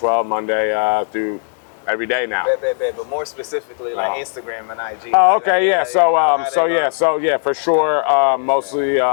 Monday through every day now. But more specifically, like Instagram and IG. Oh, okay, yeah. So for sure. Mostly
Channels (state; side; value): silent; right; 58 dB below the other